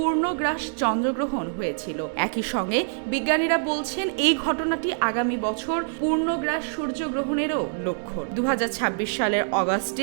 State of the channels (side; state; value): left; silent; digital silence